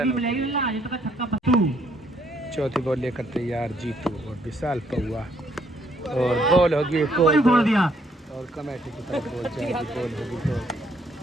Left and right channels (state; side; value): normal; both; correlation 0.69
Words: चौथी बॉल लेकर तैयार जीतू और विशाल पहुआ और बॉल होगी और कमेटी की तरफ बॉल जाएगी। बॉल होगी तो